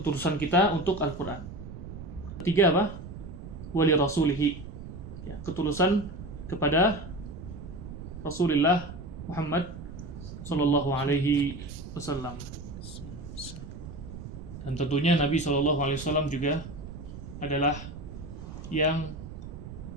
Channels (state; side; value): noise; right; rumble, 11 dB below the sound